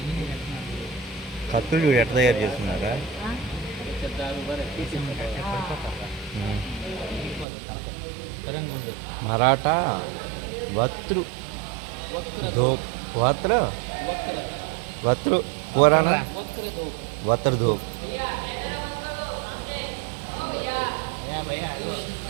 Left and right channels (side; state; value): left; drops out; at 7.5 s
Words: కత్తులు చూడు ఎట్లా తయారు చేస్తున్నారా మరాఠా వత్రు ధూప్ వత్రు పురాణ వత్ర ధూప్